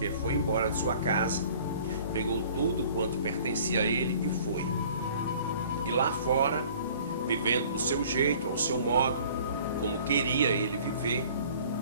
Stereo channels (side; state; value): both; inverted; correlation -0.51